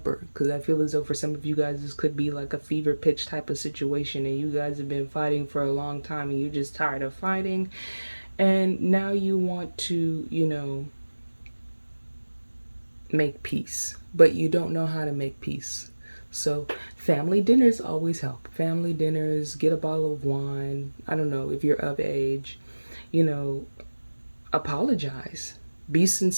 because I feel as though for some of you guys this could be like a fever pitch type of situation, and you guys have been fighting for a long time and you're just tired of fighting, and now you want to, make peace, but you don't know how to make peace. So family dinners always help. Family dinners, get a bottle of wine. I don't know if you're of age, you know, apologize. Be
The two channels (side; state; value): both; inverted; correlation -1.00